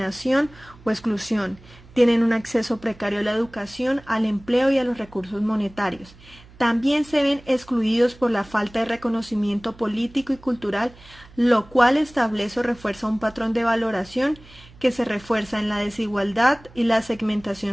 o exclusión. Tienen un acceso precario a la educación, al empleo y a los recursos monetarios. También se ven excluidos por la falta de reconocimiento político y cultural, lo cual establece o refuerza un patrón de valoración que se refuerza en la desigualdad y la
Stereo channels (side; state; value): right; noise; hum, 23 dB below the sound